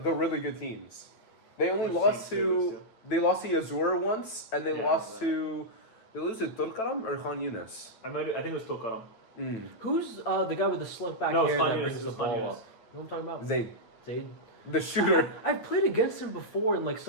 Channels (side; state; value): right; late; 8.9 ms